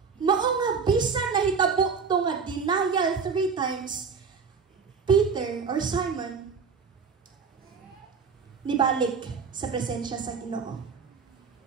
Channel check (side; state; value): left; quieter; 5.6 dB